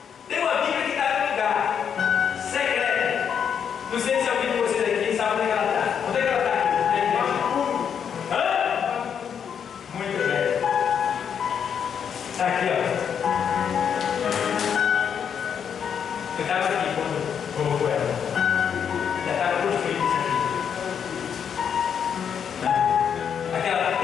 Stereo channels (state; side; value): quieter; right; 7.7 dB